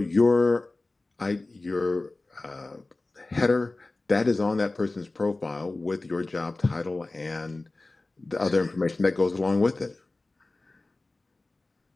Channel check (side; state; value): right; quieter; 3.1 dB